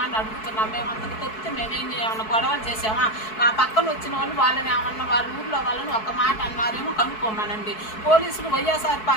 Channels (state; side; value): late; right; 4.6 ms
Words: అని అడుగుతున్నాం. మేము అంతకు తప్పితే మేమేం ఏమన్నా గొడవలు చేసామా? మా పక్కన వచ్చిన వాళ్ళు వాళ్ళని ఏమన్నా వాళ్ళ ఊళ్ళో వాళ్ళని ఒక మాట అన్నారేమో కనుక్కోమనండి. పోలీసులు వైఎస్ఆర్